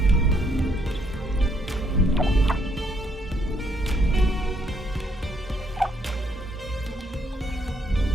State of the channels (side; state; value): both; normal; correlation 0.72